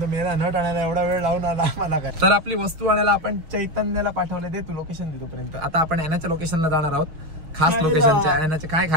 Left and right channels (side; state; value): left; late; 6.3 ms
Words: मेला नट आणायला एवढा वेळ लावून आला मला काय. तर आपली वस्तू आणायला आपण चैतन्याला पाठवले. दे तू लोकेशन दे तोपर्यंत. आता आपण ॲनाच्या लोकेशनला जाणार आहोत. खास लोकेशनच्या. ॲनाचे काय